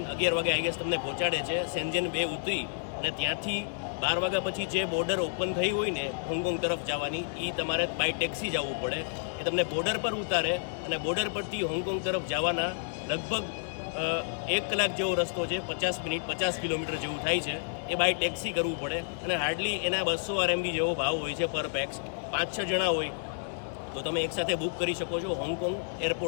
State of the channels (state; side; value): silent; right; 58 dB below the other